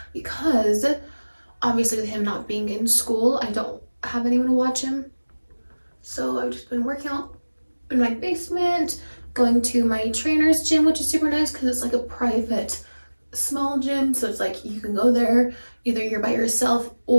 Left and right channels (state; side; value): inverted; both; correlation -1.00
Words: because obviously with him not being in school, I don't have anyone to watch him. So I've just been working out in my basement, going to my trainer's gym, which is super nice because it's like a private small gym. So it's like you can go there, either you're by yourself